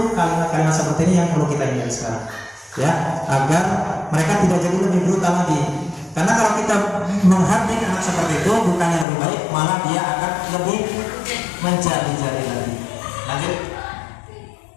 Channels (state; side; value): drops out; right; at 9.1 s